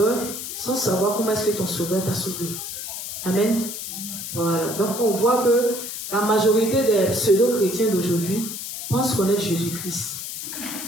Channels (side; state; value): left; noise; hiss, 7 dB below the sound